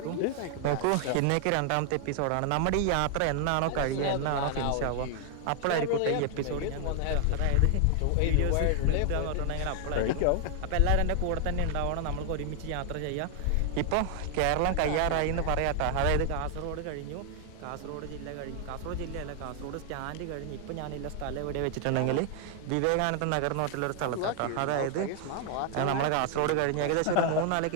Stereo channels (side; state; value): both; different; correlation 0.00